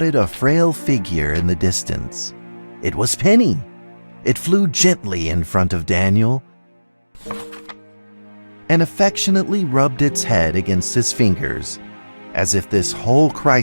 a frail figure in the distance. It was Penny. It flew gently in front of Daniel and affectionately rubbed its head against his fingers, as if this whole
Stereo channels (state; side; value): inverted; both; correlation -1.00